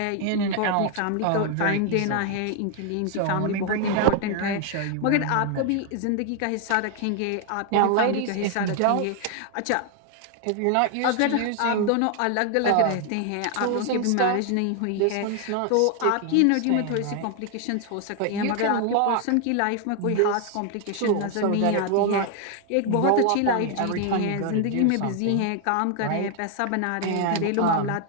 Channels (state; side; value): different; both; correlation 0.00